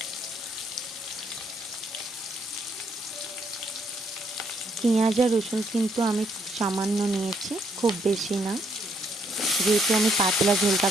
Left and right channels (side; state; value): both; normal; correlation 0.71